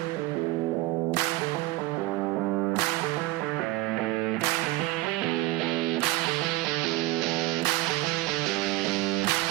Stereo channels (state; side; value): quieter; left; 19.0 dB